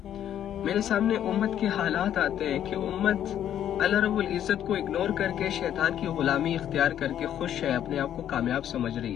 میرے سامنے امت کے حالات آتے ہیں کہ امت اللہ رب العزت کو اگنور کر کے شیطان کی غلامی اختیار کر کے خوش ہے، اپنے آپ کو کامیاب سمجھ رہی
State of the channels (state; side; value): quieter; right; 10.5 dB